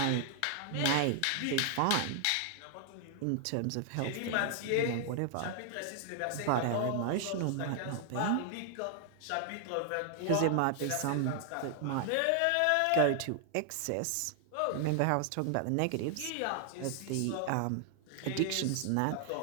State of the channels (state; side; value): different; both; correlation 0.00